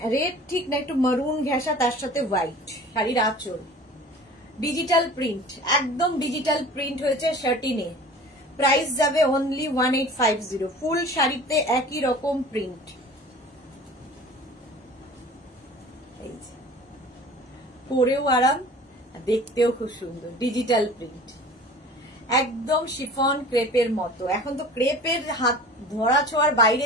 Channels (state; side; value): normal; both; correlation 0.42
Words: রেড ঠিক না, একটু মারুন ঘেঁষা, তার সাথে হোয়াইট। শাড়ির আঁচল ডিজিটাল প্রিন্ট, একদম ডিজিটাল প্রিন্ট হয়েছে শার্টিনে। প্রাইস যাবে অনলি 1850। ফুল শাড়িতে একই রকম প্রিন্ট। পরেও আরাম, দেখতেও খুব সুন্দর, ডিজিটাল প্রিন্ট, একদম শিফন ক্রেপের মতো। এখন তো ক্রেপের হাত ধরা ছোঁয়ার বাইরে